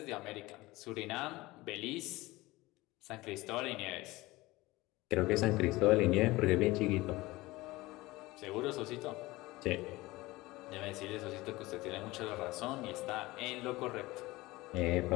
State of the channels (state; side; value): quieter; right; 20.2 dB